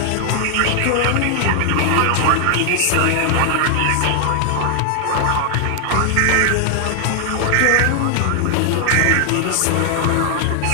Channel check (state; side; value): different; both; correlation 0.00